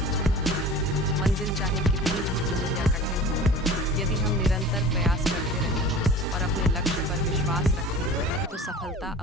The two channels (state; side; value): normal; both; correlation 0.39